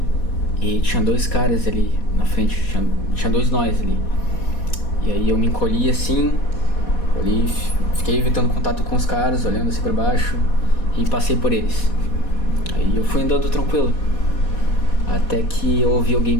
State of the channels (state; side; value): late; right; 4.2 ms